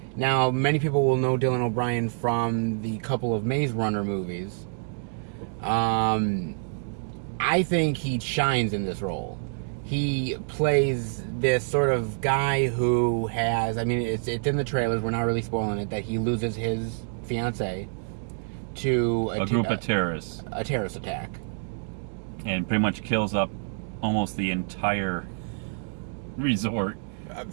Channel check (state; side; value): silent; left; digital silence